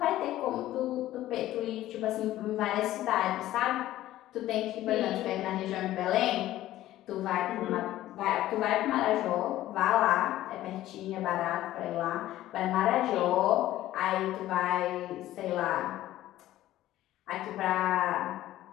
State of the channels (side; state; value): right; quieter; 14.5 dB